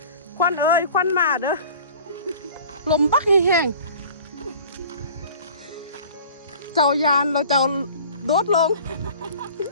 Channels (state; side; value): inverted; both; correlation -0.45